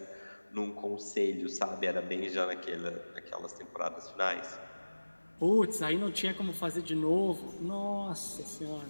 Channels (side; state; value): both; inverted; correlation -1.00